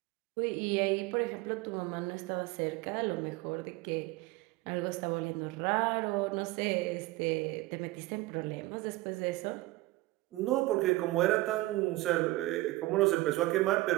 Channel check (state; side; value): quieter; left; 19.4 dB